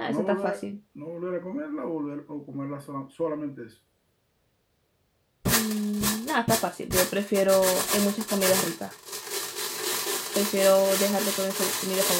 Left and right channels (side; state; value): both; identical; correlation 1.00